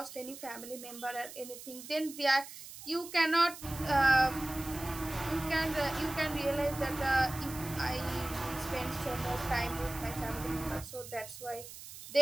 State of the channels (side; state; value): right; noise; hiss, 13 dB below the sound